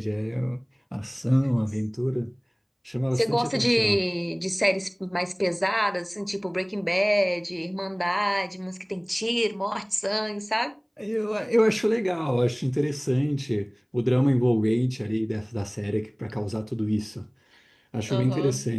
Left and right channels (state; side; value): identical; both; correlation 1.00